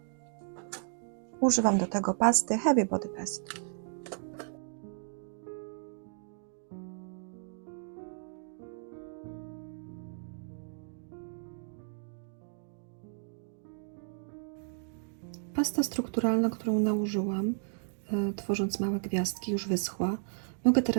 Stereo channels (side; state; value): left; silent; digital silence